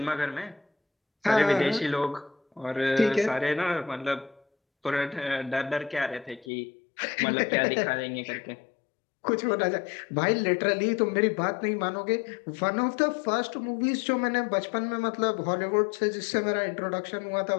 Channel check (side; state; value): right; drops out; at 6.5 s